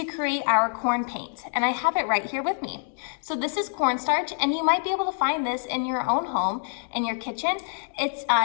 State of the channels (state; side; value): silent; right; digital silence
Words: create our corn paint, and I have it right here with me. So this is cornstarch, and you might be able to find this in your own home, in your kitchen. It's